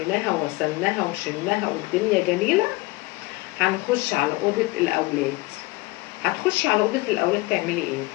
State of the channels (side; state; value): right; quieter; 21.9 dB